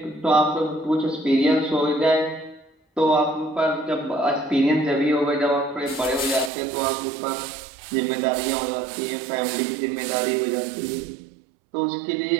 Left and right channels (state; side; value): drops out; left; at 6.5 s